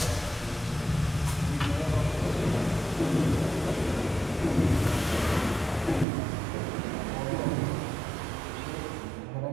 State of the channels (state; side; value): drops out; left; at 6.1 s